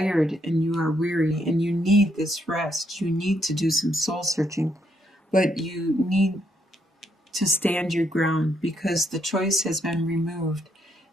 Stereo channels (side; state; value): both; normal; correlation 0.75